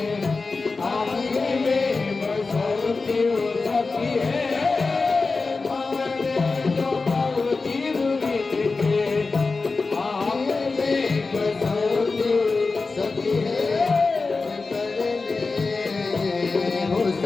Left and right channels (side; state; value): right; quieter; 4.0 dB